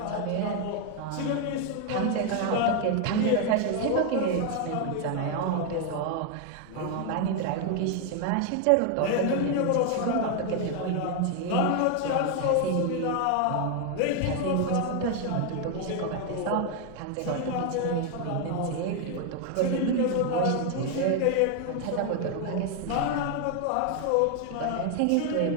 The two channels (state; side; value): different; both; correlation 0.01